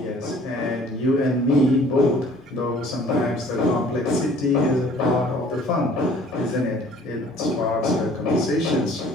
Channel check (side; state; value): both; normal; correlation 0.53